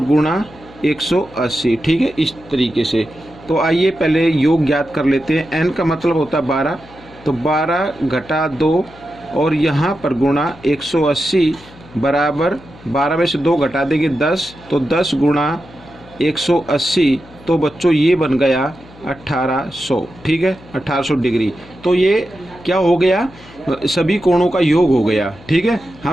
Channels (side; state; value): left; noise; hum, 22 dB below the sound